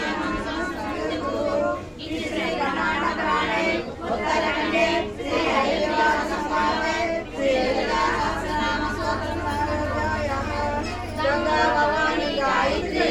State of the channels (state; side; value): identical; both; correlation 1.00